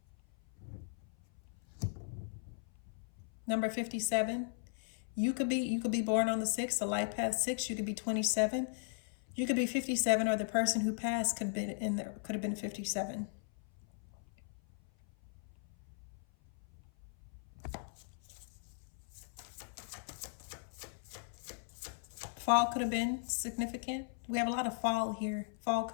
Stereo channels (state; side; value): silent; right; 53 dB below the other